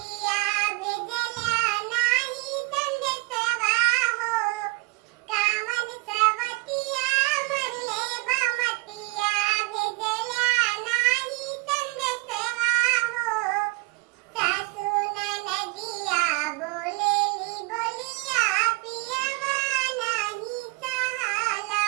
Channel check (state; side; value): quieter; left; 25.3 dB